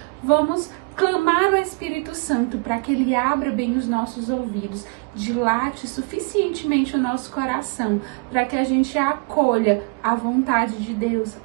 vamos clamar o Espírito Santo para que ele abra bem os nossos ouvidos, dilate suficientemente o nosso coração, para que a gente acolha a vontade de Deus,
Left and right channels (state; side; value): quieter; left; 31.4 dB